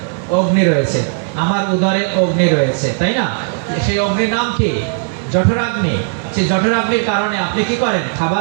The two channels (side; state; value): left; silent; 69 dB below the other